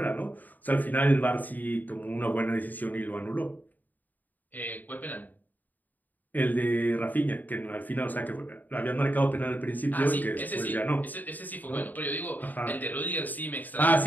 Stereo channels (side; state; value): right; late; 0.084 ms